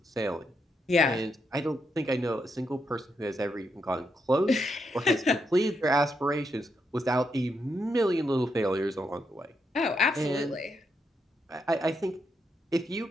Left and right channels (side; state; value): both; normal; correlation 0.80